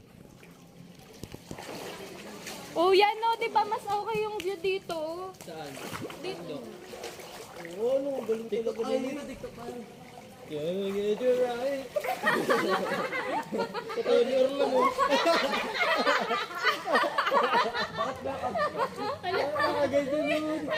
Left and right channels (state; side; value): identical; both; correlation 1.00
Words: Oh, yan no, di ba mas okay yung view dito? Saan? Dito. Oo, ano, galing talaga Ay, na hindi yun. na TikTok pa. Can get you right. Tutorial lang mo. Ganyan naman.